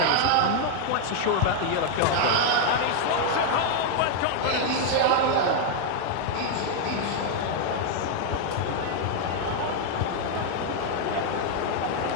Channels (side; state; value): both; different; correlation 0.00